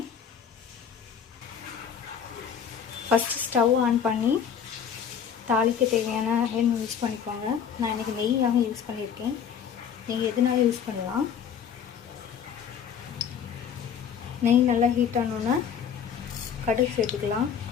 ஃபஸ்ட்டு ஸ்டவ் ஆன் பண்ணி தாளிக்க தேவையான எண்ணெய் யூஸ் பண்ணிக்கோங்க. நான் இன்றைக்கி நெய்யாக யூஸ் பண்ணியிருக்கேன். நெய் எதுனாலும் யூஸ் பண்ணலாம். நெய் நல்லா ஹீட் ஆனோன்னா கடுகு சேர்த்துக்கலாம்.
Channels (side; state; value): right; quieter; 7.8 dB